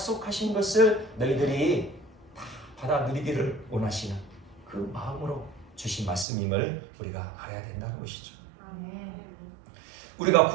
것을 너희들이 다 받아 누리기를 원하시는 그 마음으로 주신 말씀임을 우리가 알아야 된다는 것이죠. 우리가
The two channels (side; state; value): left; drops out; at 6.2 s